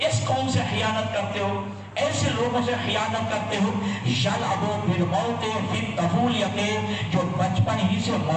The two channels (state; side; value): identical; both; correlation 1.00